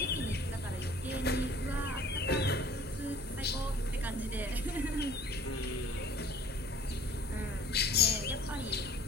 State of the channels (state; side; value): normal; both; correlation 0.51